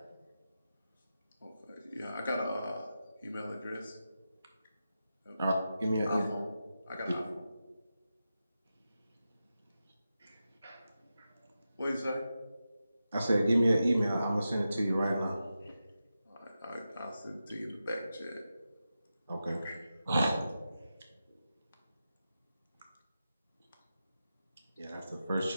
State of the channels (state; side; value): inverted; both; correlation -0.90